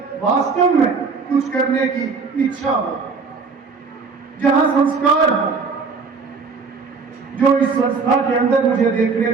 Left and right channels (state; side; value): quieter; left; 4.8 dB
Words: वास्तव में कुछ करने की इच्छा हो, जहां संस्कार हो, जो इस संस्था के अंदर मुझे देखने